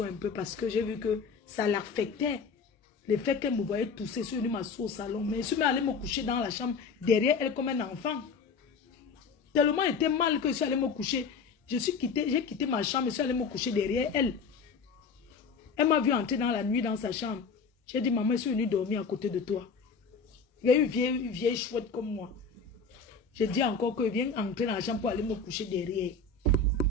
un peu parce que j'ai vu que ça l'affectait. Le fait qu'elle me voyait tousser, je suis venue m'asseoir au salon. Mais je suis allée me coucher dans la chambre derrière elle comme un enfant. Tellement était mal que je suis allée me coucher. J'ai quitté ma chambre et je suis allée me coucher derrière elle. Elle m'a vu entrer dans la nuit dans sa chambre. J'ai dit, maman, je suis venue dormir à côté de toi. Il y a une vieille chouette comme moi. J'ai dit encore que viens entrer dans la chambre pour aller me coucher derrière.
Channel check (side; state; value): right; quieter; 4.9 dB